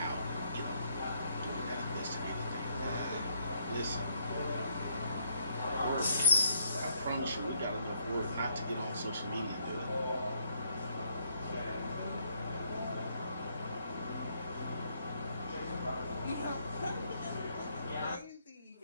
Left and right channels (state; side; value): inverted; both; correlation -0.72